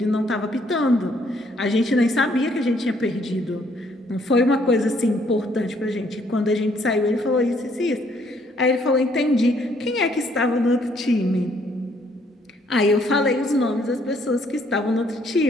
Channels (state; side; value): normal; both; correlation 0.67